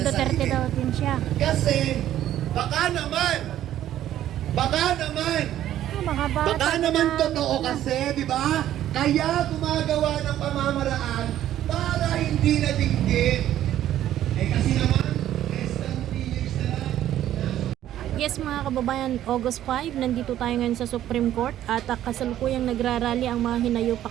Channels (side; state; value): left; quieter; 12.2 dB